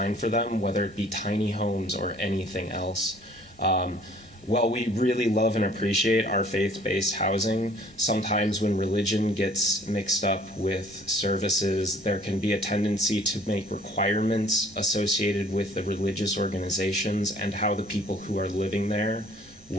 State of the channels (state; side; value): normal; both; correlation 0.55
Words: for them, whether it be tiny homes or anything else. While we really love and appreciate our faith-based housing, sometimes when religion gets mixed up with services, there can be a tendency to make requirements associated with the religious organizations and how the people who are living there